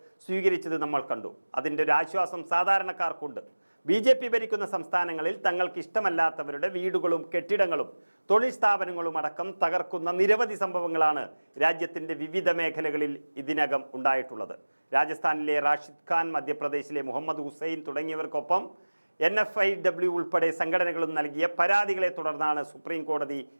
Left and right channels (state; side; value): inverted; both; correlation -1.00